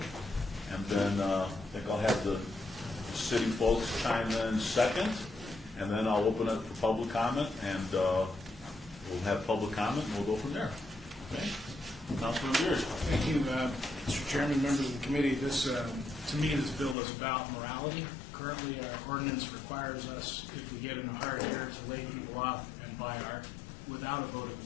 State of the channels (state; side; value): drops out; right; at 16.9 s